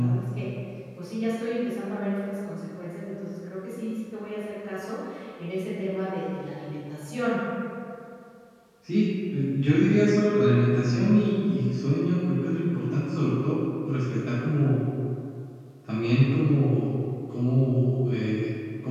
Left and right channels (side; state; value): both; identical; correlation 1.00